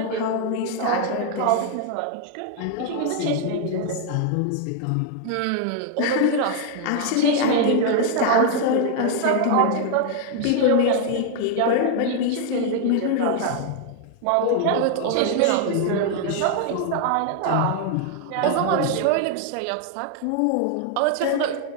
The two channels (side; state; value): both; different; correlation 0.00